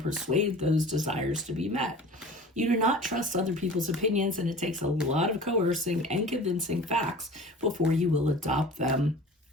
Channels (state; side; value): normal; both; correlation 0.41